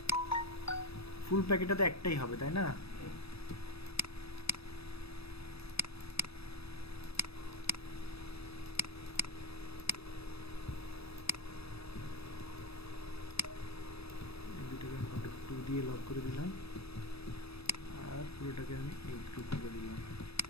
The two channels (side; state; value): right; late; 0.78 ms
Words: ফুল প্যাকেটটা তো একটাই হবে তাই না? এই দুটোকে আমি কন্ট্রোল 2 দিয়ে লক করে দিলাম আর পুরোটাকে আমি এই গ্রুপ করে দিলাম।